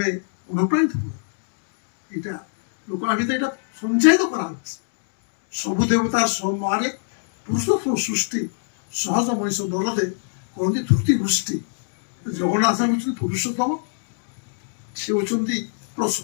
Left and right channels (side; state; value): right; silent; digital silence